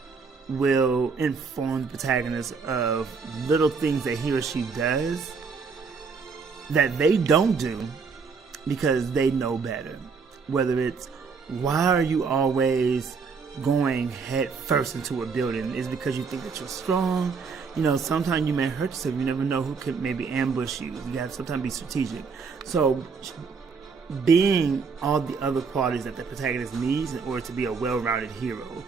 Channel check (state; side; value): quieter; left; 5.3 dB